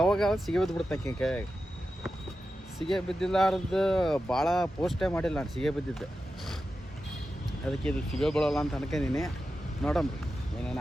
ಸಿಗಿ ಬಿದ್ದುಬಿಡ್ತಕ್ಕೆ ಕೈಯಾಗ. ಸಿಗೆ ಬಿದ್ದಿಲ್ಲಾರ್ದು ಭಾಳ ಪೋಸ್ಟೇ ಮಾಡಿಲ್ಲ ನಾನು ಸಿಗೆ ಬಿದ್ದಿದ್ದು. ಅದಕ್ಕೆ ಇದು ಸಿಗೆ ಬೀಳೋಲ್ಲ ಅಂತ ಅನ್ಕೊಂಡಿನಿ. ನೋಡಮ್ರಿ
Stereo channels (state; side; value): normal; both; correlation 0.91